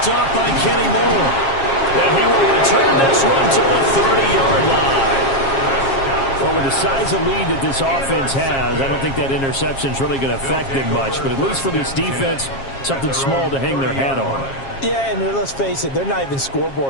up by Kenny Moore. And he will return this one to the 30-yard line. Well, with the size of lead that this offense has, I don't think that interception is really going to affect them much. But at least for this defense, something small to hang their hat on. Yeah, and let's face it, they're not even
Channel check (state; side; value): late; right; 7.4 ms